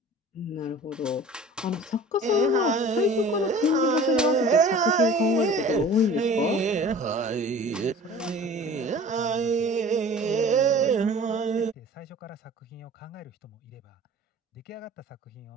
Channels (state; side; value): normal; both; correlation 0.44